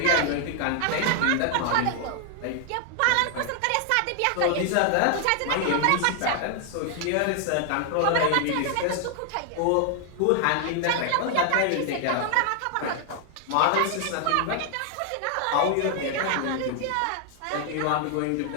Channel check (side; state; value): both; different; correlation 0.00